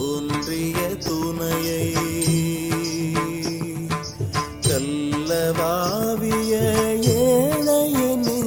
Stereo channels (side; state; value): both; identical; correlation 1.00